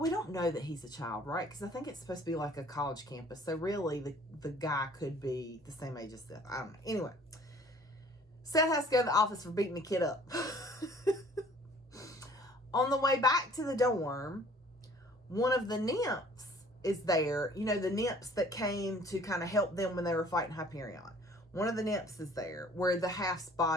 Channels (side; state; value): both; normal; correlation 0.53